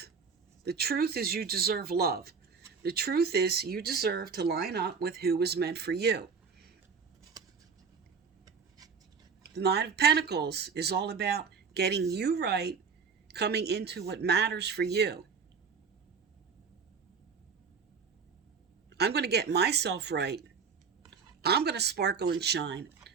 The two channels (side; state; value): left; quieter; 5.8 dB